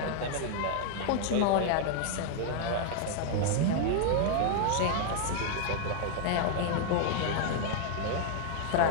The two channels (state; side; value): different; both; correlation 0.00